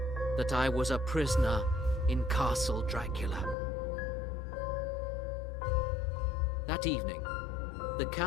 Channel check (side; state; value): right; drops out; at 3.6 s